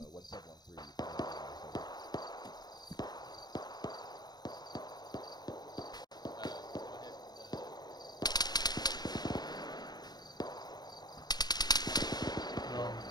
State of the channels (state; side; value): late; right; 0.20 ms